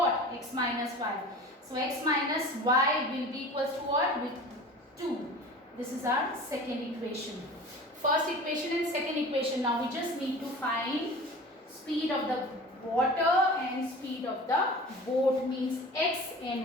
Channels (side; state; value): both; normal; correlation 0.38